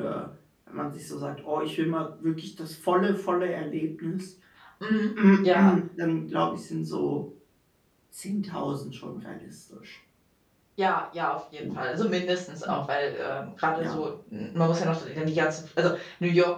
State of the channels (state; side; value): identical; both; correlation 1.00